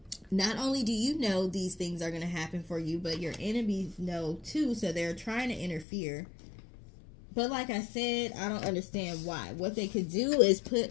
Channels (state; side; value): drops out; right; at 5.9 s